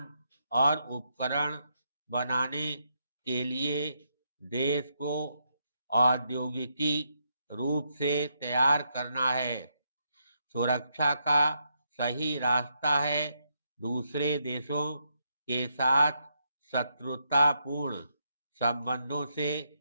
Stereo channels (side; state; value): both; inverted; correlation -0.79